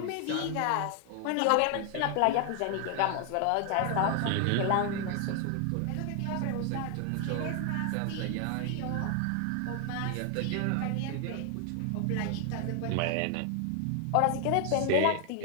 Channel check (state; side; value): different; both; correlation 0.00